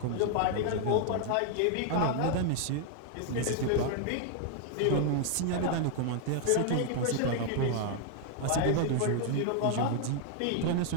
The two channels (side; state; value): both; different; correlation 0.00